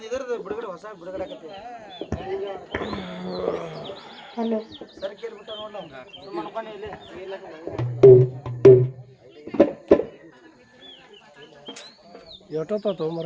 ಇದರದ್ದು ಬಿಡುಗಡೆ ಹೊಸ ಬಿಡುಗಡೆ ಆಗತ್ತೆ ಹಲೋ ಸರಿ ಕೇಳ್ಬಿಟ್ಟ ನೋಡ ಸುಮ್ಮನೆ ಇಲ್ಲಿ ಎಷ್ಟೊತ್ತ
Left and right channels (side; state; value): both; identical; correlation 1.00